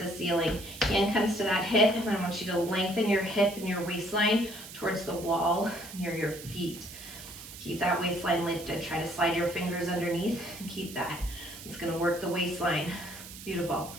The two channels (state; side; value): noise; right; hiss, 14 dB below the sound